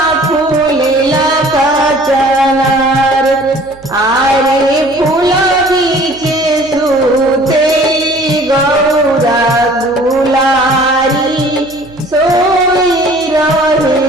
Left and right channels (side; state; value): right; noise; hum, 24 dB below the sound